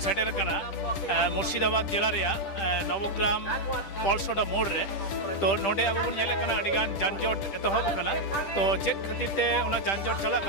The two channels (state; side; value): late; right; 10 ms